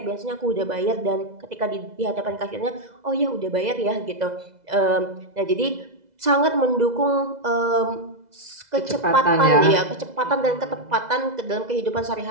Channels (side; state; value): left; late; 2.0 ms